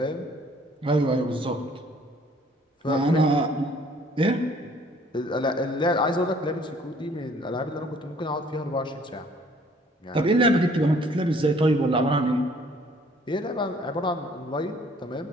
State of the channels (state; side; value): normal; both; correlation 0.58